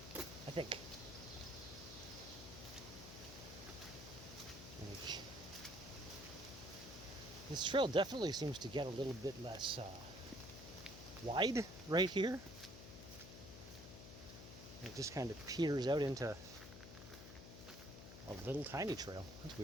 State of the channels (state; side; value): noise; left; hum, 12 dB below the sound